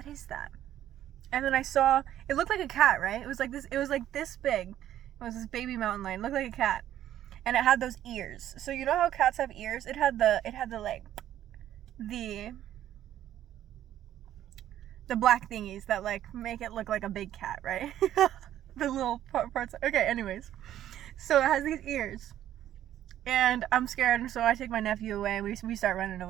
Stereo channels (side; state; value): left; quieter; 11.9 dB